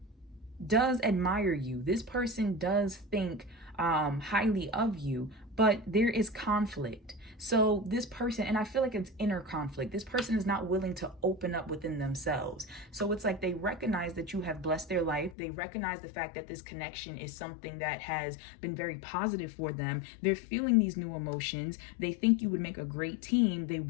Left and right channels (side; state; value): right; drops out; at 15.4 s